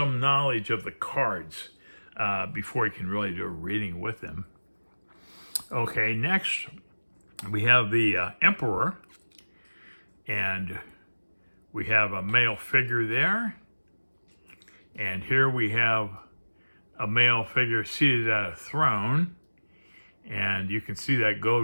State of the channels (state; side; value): inverted; both; correlation -1.00